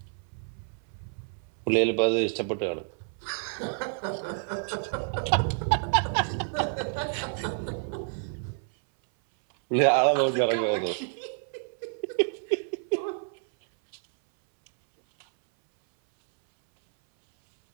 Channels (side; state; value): left; silent; 59 dB below the other